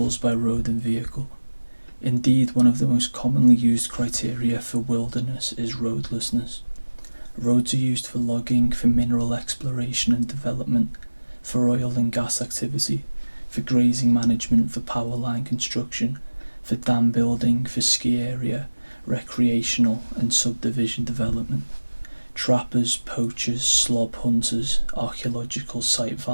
by road and vehicle. Indeed, one of the most commonly used criteria for wilderness is roadlessness. Roads are used for logging, for mineral exploration and development, for oil and gas activity, for grazing management, for power line construction, for dam building, for ski area, recreational and subdivision development. Trappers, poachers, slob hunters, archaeological site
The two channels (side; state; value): both; inverted; correlation -1.00